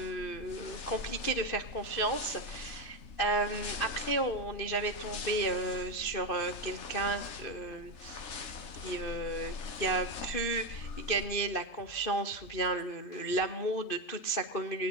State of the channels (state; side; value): late; right; 2.6 ms